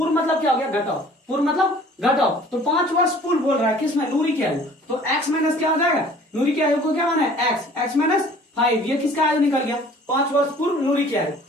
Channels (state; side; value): normal; both; correlation 0.51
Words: मतलब क्या हो गया, घटाओ, पूर्व मतलब घटाओ। तो 5 वर्ष पूर्व बोल रहा है किसमें, नूरी की आयु। तो एक्स माइनस क्या हो जाएगा, नूरी की आयु को क्या माने, एक्स, एक्स माइनस 5। ये किसका आयु निकल गया, 5 वर्ष पूर्व नूरी की आयु।